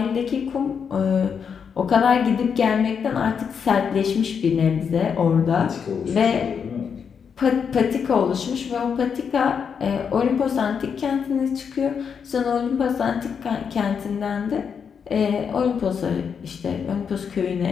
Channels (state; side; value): quieter; right; 6.8 dB